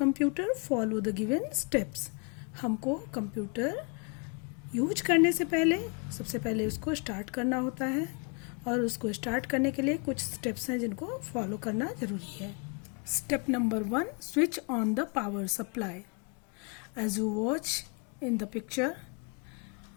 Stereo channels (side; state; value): right; quieter; 34.6 dB